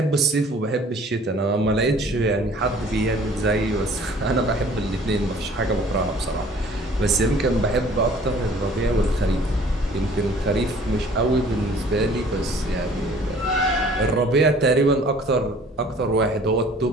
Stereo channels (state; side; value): normal; both; correlation 0.52